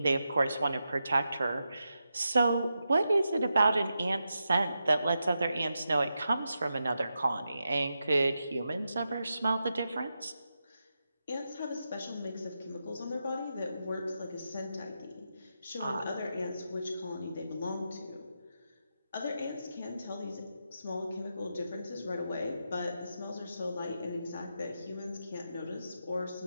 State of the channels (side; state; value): both; inverted; correlation -0.87